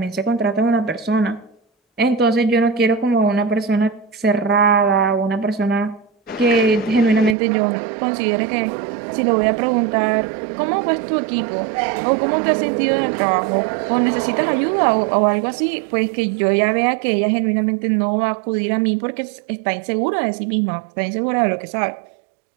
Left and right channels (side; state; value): left; drops out; at 7.4 s